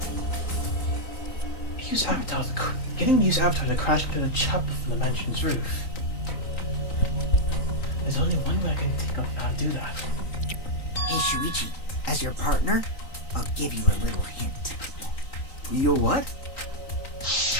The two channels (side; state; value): right; late; 3.9 ms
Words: Getting Mu's avatar to crash into the chapel from the mansion's roof. There's only one way I can think of how to do that. Hey Suichi, as your partner, I'll give you a little hint. You what?